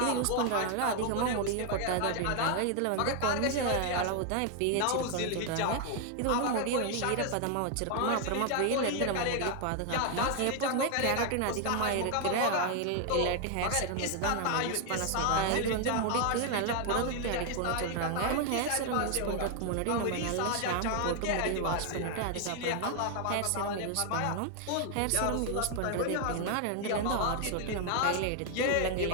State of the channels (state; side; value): different; both; correlation 0.00